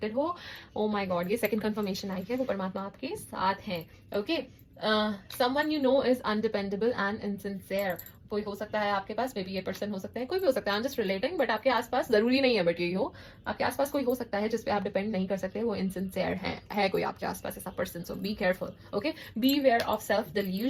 हो। ओह माय गॉड, ये सेकंड कंफर्मेशन आई है, वो परमात्मा आपके साथ है। Okay, someone you know is undependable and insincere, कोई हो सकता है आपके पास, मे बी ये पर्सन हो सकता है, कोई भी हो सकता है, I am just relating, but आपके आसपास, जरूरी नहीं है बट यही हो, आपके आसपास कोई हो सकता है जिसपे आप डिपेंड नहीं कर सकते, वो इनसिंसियर है कोई आपके आसपास ऐसा person, so be careful. Okay, beware of self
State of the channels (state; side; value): identical; both; correlation 1.00